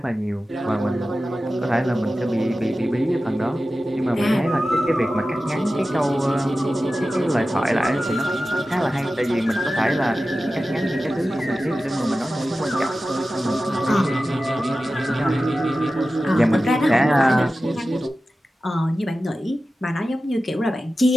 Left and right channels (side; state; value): both; normal; correlation 0.94